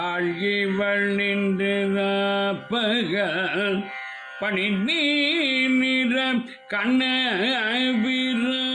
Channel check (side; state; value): both; identical; correlation 1.00